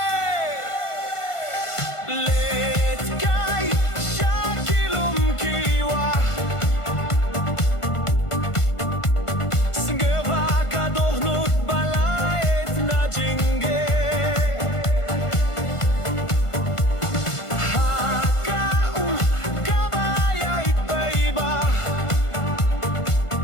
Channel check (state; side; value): late; right; 1.5 ms